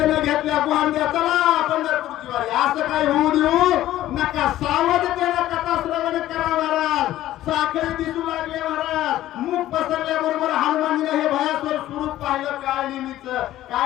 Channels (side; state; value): right; quieter; 14.0 dB